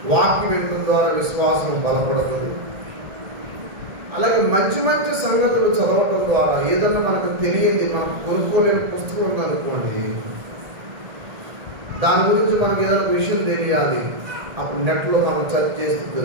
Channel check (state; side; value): late; left; 1.8 ms